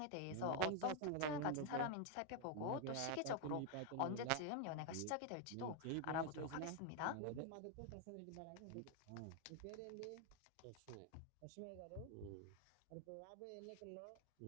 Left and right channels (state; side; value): different; both; correlation 0.01